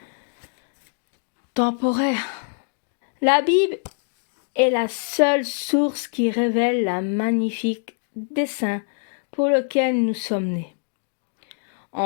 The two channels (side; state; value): right; silent; digital silence